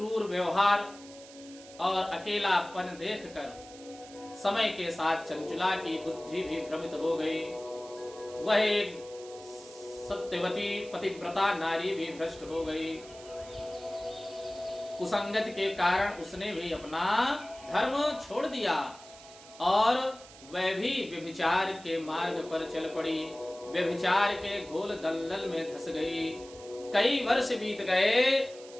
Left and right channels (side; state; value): right; noise; hiss, 19 dB below the sound